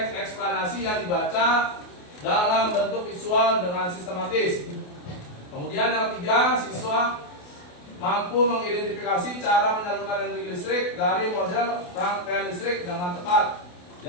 eksplanasi yang dibaca dalam bentuk visual dengan sistematis. Kemudian yang ketiga, siswa mampu mengidentifikasi cara menyalurkan energi listrik dari model rangkaian listrik dengan tepat.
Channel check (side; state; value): right; late; 28 ms